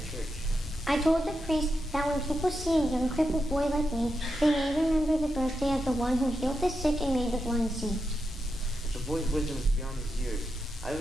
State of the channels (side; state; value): both; normal; correlation 0.86